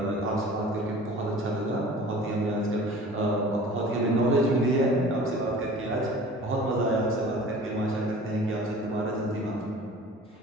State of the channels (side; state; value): both; normal; correlation 0.44